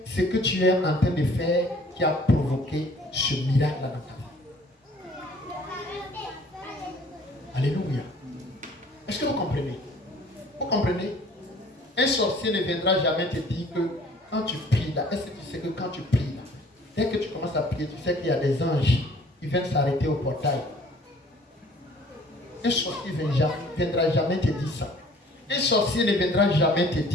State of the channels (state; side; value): normal; both; correlation 0.54